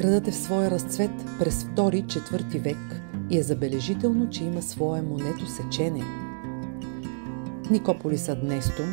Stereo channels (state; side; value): silent; left; digital silence